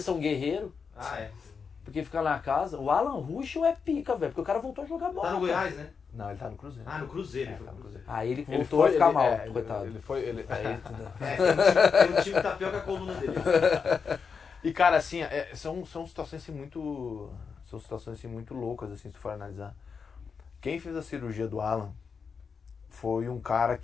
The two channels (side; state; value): right; quieter; 5.8 dB